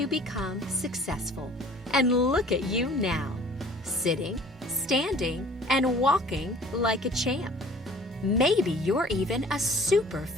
become successful. And look at you now, sitting, standing, and walking like a champ. Maybe you're even a super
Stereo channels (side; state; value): both; normal; correlation 0.50